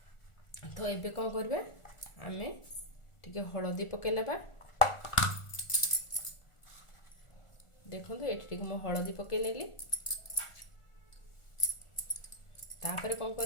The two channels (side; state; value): right; late; 1.4 ms